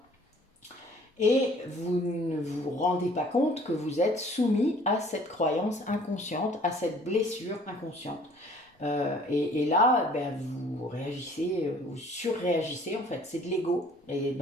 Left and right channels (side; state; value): both; normal; correlation 0.54